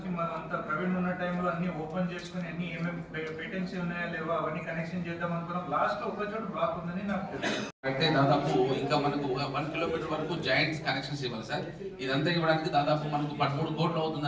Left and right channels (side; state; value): both; identical; correlation 1.00